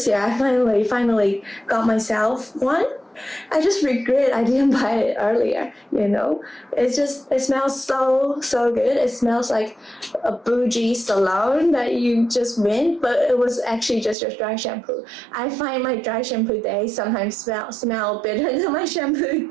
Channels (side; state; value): left; drops out; at 14.2 s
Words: year, I finally got myself one. I just regret I didn't buy it earlier, It smells so good. It smells like a bougie salon that you just went, but it was actually just your dry shampoo. I find my dry shampoo day sometimes smell better than my shampoo